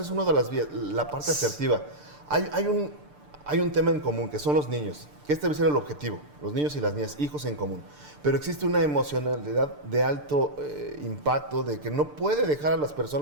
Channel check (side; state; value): left; late; 6.8 ms